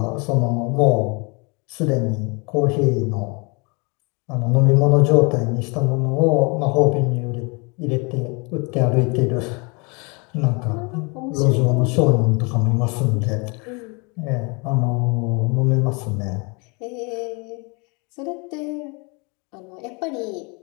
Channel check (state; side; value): quieter; right; 31.0 dB